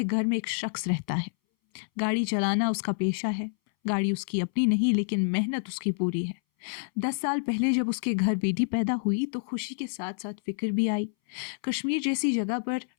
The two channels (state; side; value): silent; right; 59 dB below the other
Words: گھر میں ایک شخص رہتا ہے۔ گاڑی چلانا اس کا پیشہ ہے۔ گاڑی اس کی اپنی نہیں لیکن محنت اس کی پوری ہے۔ 10 سال پہلے جب اس کے گھر بیٹی پیدا ہوئی تو خوشی کے ساتھ ساتھ فکر بھی آئی۔ کشمیر جیسی جگہ پر